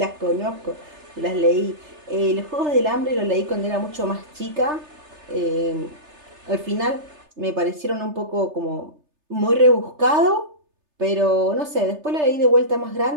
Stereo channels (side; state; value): left; late; 3.3 ms